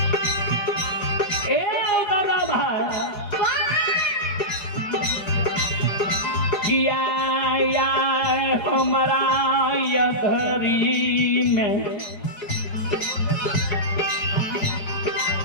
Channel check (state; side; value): late; right; 4.9 ms